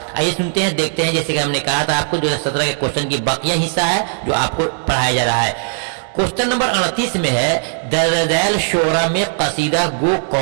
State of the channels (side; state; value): left; silent; digital silence